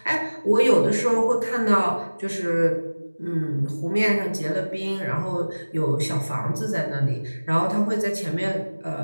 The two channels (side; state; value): both; inverted; correlation -1.00